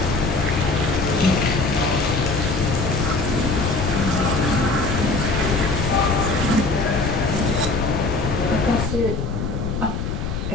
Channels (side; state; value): left; noise; rumble, 3 dB below the sound